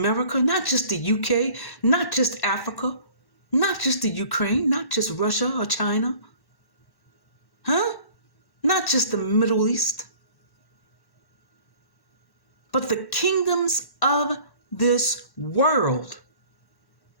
not just the UK, not just Africa, not just the Ukraine, not just Russia or China, not just the Middle East, but the kingdoms of this world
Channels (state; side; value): late; right; 1.1 ms